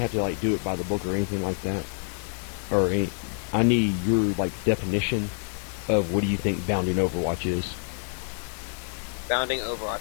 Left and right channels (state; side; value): silent; right; 60 dB below the other